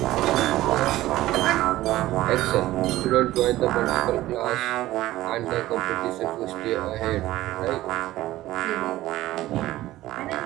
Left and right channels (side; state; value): left; quieter; 15.9 dB